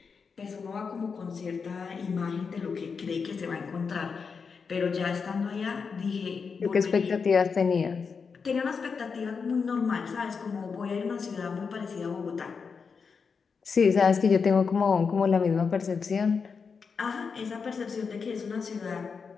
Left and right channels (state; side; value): quieter; right; 5.5 dB